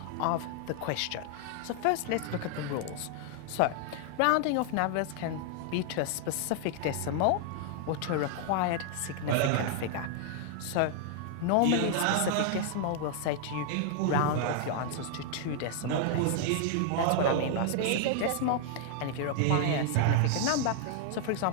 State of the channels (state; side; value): different; both; correlation 0.00